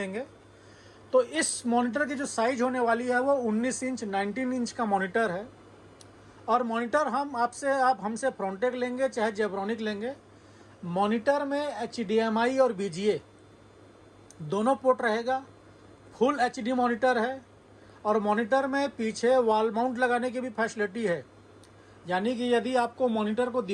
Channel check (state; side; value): identical; both; correlation 1.00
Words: तो इस मॉनिटर की जो साइज़ होने वाली है वो 19 इंच 19 इंच का मॉनिटर है। और मॉनिटर आप हमसे फ्रॉन्टेक लेंगे चाहे जेब्रॉनिक लेंगे, मॉनिटर में HDMI और BGA दोनों पोर्ट रहेगा। फुल HD मॉनिटर है और मॉनिटर में पीछे वॉल माउंट लगाने की भी फैसिलिटी है। यानी कि यदि आपको मॉनिटर को